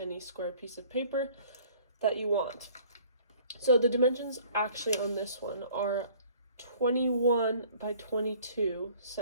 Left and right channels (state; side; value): inverted; both; correlation -0.53